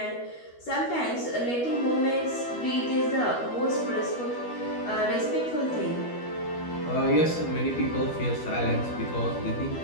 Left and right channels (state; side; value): late; right; 12 ms